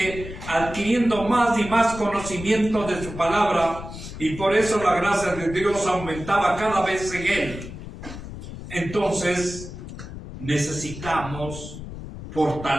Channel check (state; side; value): noise; left; rumble, 11 dB below the sound